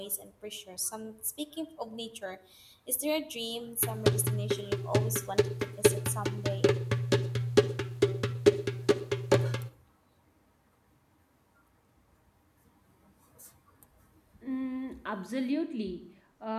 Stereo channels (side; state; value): both; identical; correlation 1.00